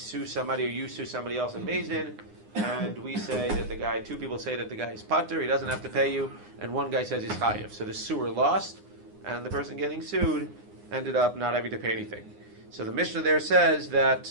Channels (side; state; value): left; late; 9.7 ms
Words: somebody or you sue somebody else in beit-din, and we say that two people say that the guy is pater, he doesn't have to pay you, and one guy says he's chayev. So the suer lost, and the person getting sued ended up not having to pay anything. So the Mishnah there says that